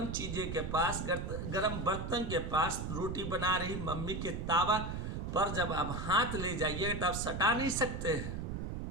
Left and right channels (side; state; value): right; noise; rumble, 4 dB below the sound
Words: चीज़ें के पास, गर्म बर्तन के पास, रोटी बना रही मम्मी के तावा पर जब आप हाथ ले जाइए तो आप सटा नहीं सकते हैं,